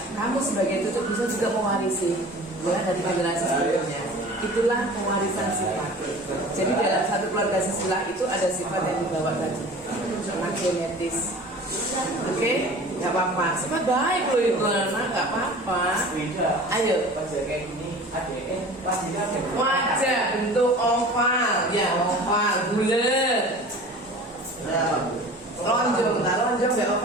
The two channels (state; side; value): normal; both; correlation 0.41